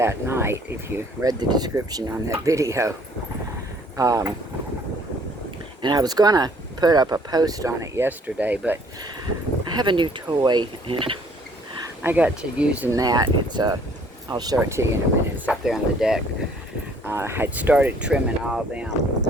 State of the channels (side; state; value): both; normal; correlation 0.59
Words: night, if you read the description on that video. And I was going to put up a post on it yesterday, but I have a new toy, and I got to using that. I'll show it to you in a minute. It's up there on the deck. I'd started trimming all them